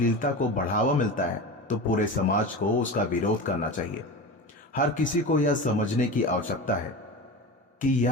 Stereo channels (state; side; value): normal; both; correlation 0.28